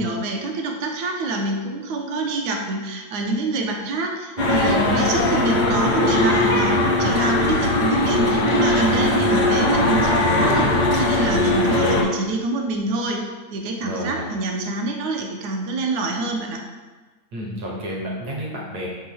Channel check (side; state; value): left; late; 8.9 ms